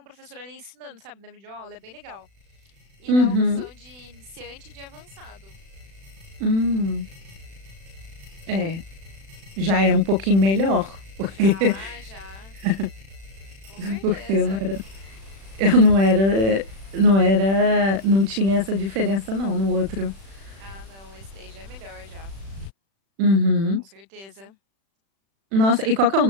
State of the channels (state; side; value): late; left; 36 ms